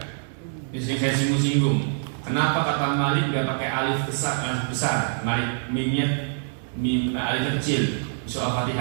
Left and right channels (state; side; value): silent; left; digital silence